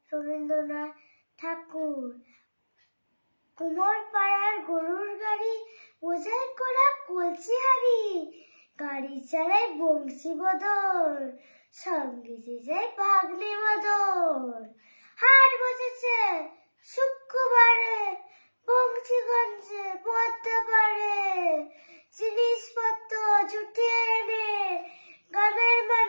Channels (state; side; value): inverted; both; correlation -1.00